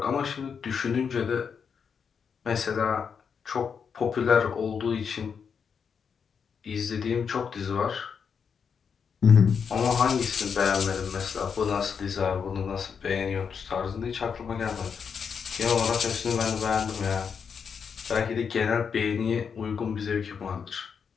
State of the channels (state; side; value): quieter; right; 6.5 dB